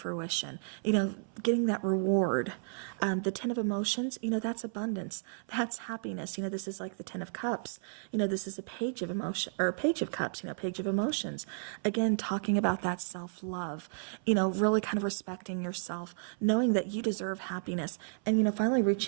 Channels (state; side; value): silent; left; 56 dB below the other